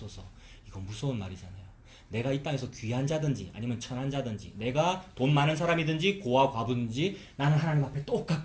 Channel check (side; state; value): both; identical; correlation 1.00